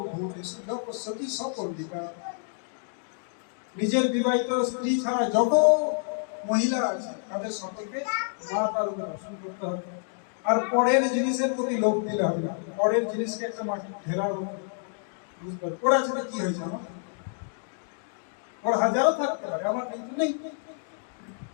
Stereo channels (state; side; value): silent; right; digital silence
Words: যপস্যতি সপন্ডিকা নিজের বিবাহিত স্ত্রী ছাড়া যত মহিলা আছে তাদের সকলকে মাতার উপর দর্শন করতে হবে আর পরের জিনিসের প্রতি লোভ দিলে হবে না পরের জিনিসকে একটা মাটি ঢেলার মতো বুঝতে পারে ওর আছে কি হয়েছে আমার ওর হাজারও থাকতে পারে আমার কিন্তু নেই